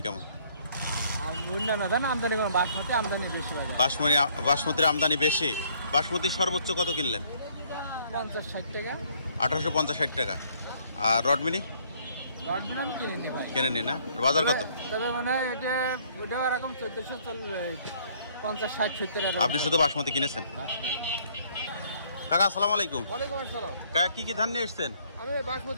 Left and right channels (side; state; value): both; inverted; correlation -0.63